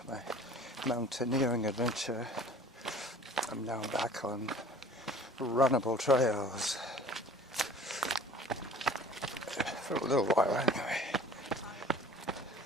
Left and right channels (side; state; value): both; normal; correlation 0.47